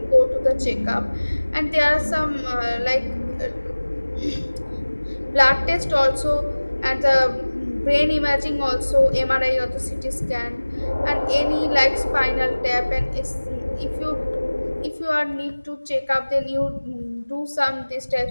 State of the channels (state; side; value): inverted; both; correlation -1.00